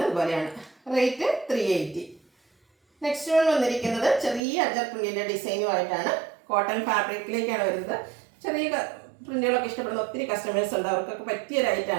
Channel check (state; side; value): drops out; left; at 4.4 s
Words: പോലെയാണ്. റേറ്റ് 380. നെക്സ്റ്റ് വൺ വന്നിരിക്കുന്നത് ചെറിയ അജക് പ്രിന്റിൻ്റെ ഡിസൈനുമായിട്ടാണ്. കോട്ടൺ ഫാബ്രിക്കിലേക്കാണ് വരുന്നത്. ചെറിയ പ്രിന്റുകളൊക്കെ ഇഷ്ടപ്പെടുന്ന ഒത്തിരി കസ്റ്റമേഴ്സ് ഉണ്ട്. അവർക്കൊക്കെ പറ്റിയ